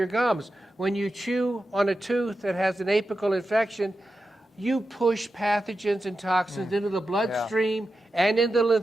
gums. When you chew on a tooth that has an apical infection, you push pathogens and toxins into the bloodstream and into the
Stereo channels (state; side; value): normal; both; correlation 0.91